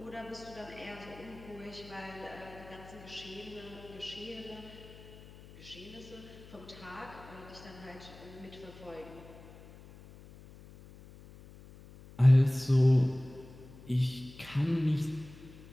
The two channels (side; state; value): left; noise; hum, 18 dB below the sound